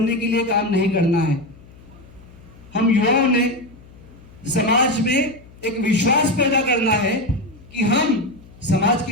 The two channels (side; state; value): left; noise; hum, 22 dB below the sound